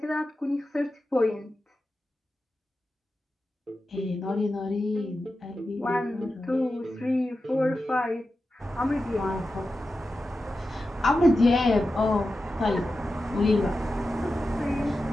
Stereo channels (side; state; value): both; normal; correlation 0.92